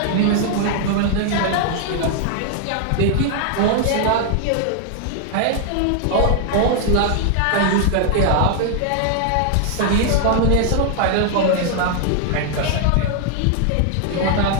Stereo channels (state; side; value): different; both; correlation 0.00